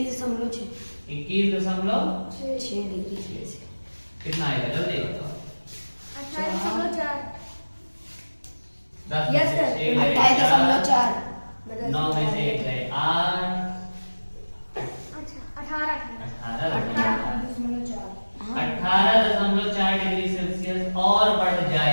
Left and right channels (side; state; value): both; inverted; correlation -1.00